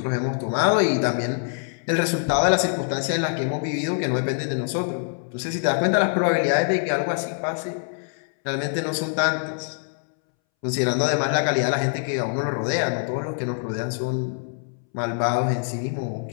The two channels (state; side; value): silent; right; 62 dB below the other